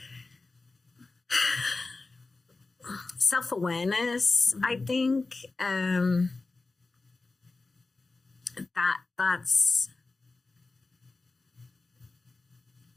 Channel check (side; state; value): right; quieter; 3.6 dB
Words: Self-awareness, I think. That's.